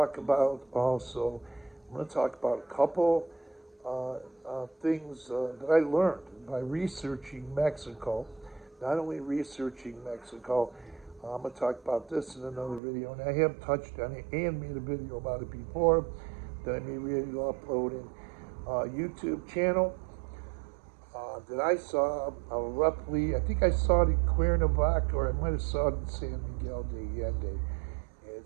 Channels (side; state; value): left; drops out; at 12.8 s